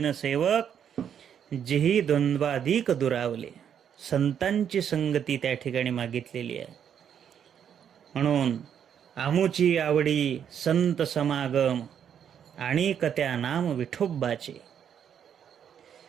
सेवक, जेही द्वंद्वाधिक दुरावले. संतांची संगती त्या ठिकाणी मागितलेली आहे. म्हणून आमुची आवडी संत समागम, आणि कत्या नाम विठोबाचे.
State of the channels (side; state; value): left; quieter; 8.6 dB